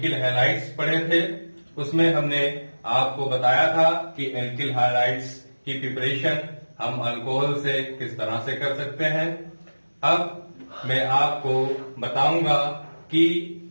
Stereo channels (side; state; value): both; inverted; correlation -1.00